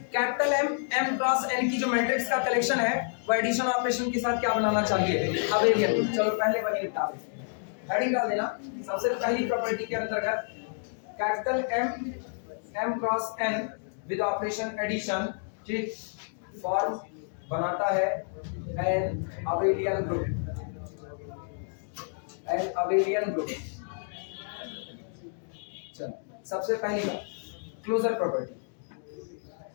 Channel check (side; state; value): right; silent; digital silence